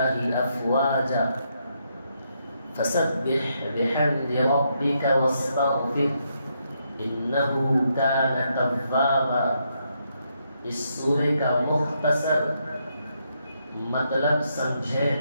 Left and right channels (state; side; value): inverted; both; correlation -0.78